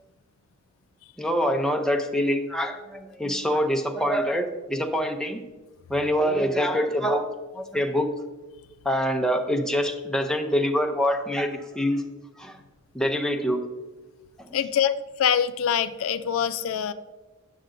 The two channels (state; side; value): normal; both; correlation 0.52